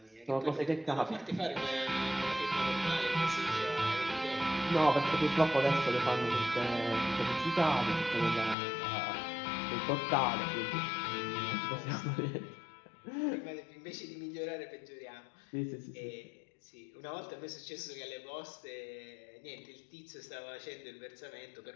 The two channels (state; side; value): drops out; right; at 8.6 s